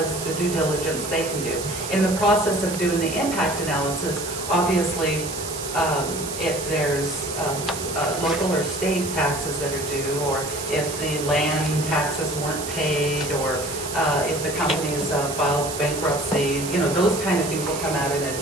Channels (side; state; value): right; noise; hiss, 8 dB below the sound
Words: the due diligence they can do. In the process of doing the impact analysis, obviously, if there's local or state taxes that are due, or if the land taxes weren't paid, or if the company's filed bankruptcy, those kind of things will come out in a